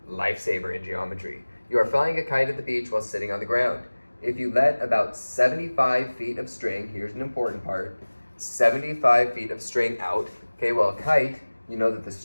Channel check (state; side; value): inverted; both; correlation -1.00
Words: lifesaver in geometry. You are flying a kite at the beach while sitting on the ground. If you let about 75 feet of string, here's an important part, 75 feet of string out. Okay, well, a kite, you know that the